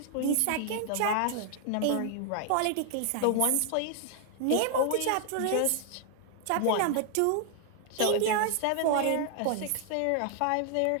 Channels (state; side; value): different; both; correlation 0.00